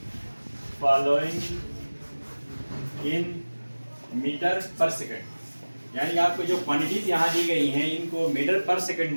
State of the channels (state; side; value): inverted; both; correlation -1.00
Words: following in meter per second, यानी आपको जो क्वांटिटीज यहाँ दी गई हैं इनको मीटर पर सेकेंड